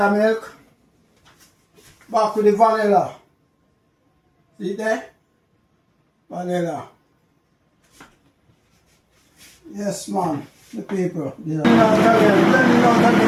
milk, back with the vanilla. See there? Vanilla. Yes, man, the people. Yeah.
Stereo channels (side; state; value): both; identical; correlation 1.00